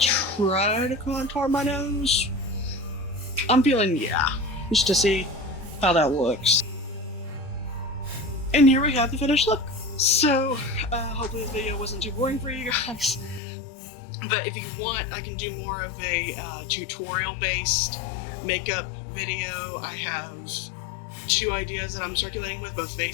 try to contour my nose? I'm feeling, yeah, just to see how that looks. And here we have the finished look. So, hopefully this video wasn't too boring for you guys. But if you want, I can do more of a tutorial-based makeup video. I have 2 ideas that I'm circulating with, both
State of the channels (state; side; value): drops out; right; at 13.4 s